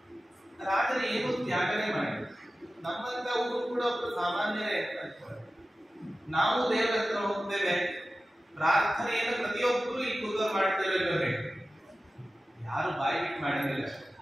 ರಾಜರು ಏನು ತ್ಯಾಗನೇ ಮಾಡಿದ್ರು. ನಮ್ಮಂತವರು ಕೂಡ ಒಬ್ಬರು ಸಾಮಾನ್ಯರೇ ಅಂತ ನಾವು ದೇವರ ಹತ್ರ ಹೋಗ್ತೇವೆ, ಪ್ರಾರ್ಥನೆಯನ್ನು ಪ್ರತಿಯೊಬ್ಬರು ಈ ಕೂದಲು ಮಾಡ್ತೇವೆ, ಯಾರು ಬಾಯಿ ಬಿಟ್ಟು ಮಾಡೋದಿಲ್ಲ.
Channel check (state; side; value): normal; both; correlation 0.95